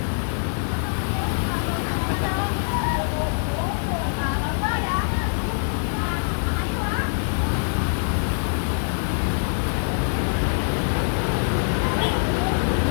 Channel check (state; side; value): silent; right; digital silence